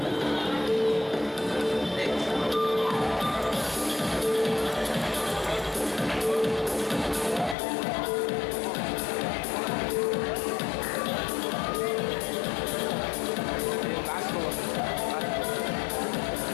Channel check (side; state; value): right; drops out; at 7.6 s